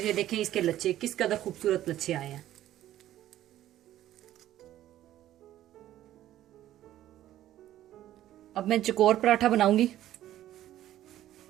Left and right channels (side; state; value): left; quieter; 13.1 dB